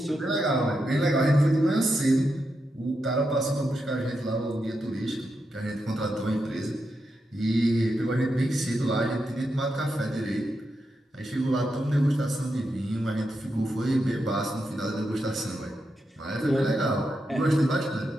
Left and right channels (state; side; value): normal; both; correlation 0.85